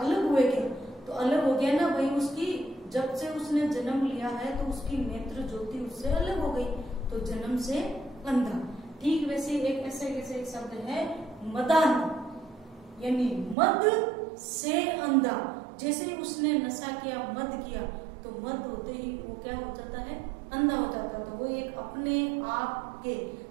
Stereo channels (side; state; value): left; drops out; at 13.6 s